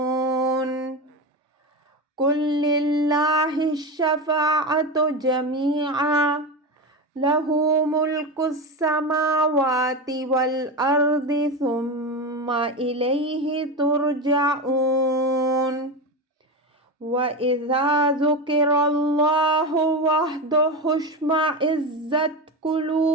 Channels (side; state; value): both; normal; correlation 0.19